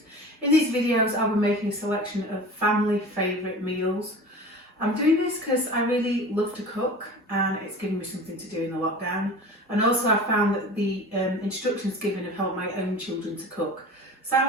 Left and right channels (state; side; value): normal; both; correlation 0.37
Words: In these videos I'll be making a selection of family favourite meals. I'm doing this because I really love to cook and it's given me something to do in the lockdown, and also I found that the instructions given have helped my own children to cook. So I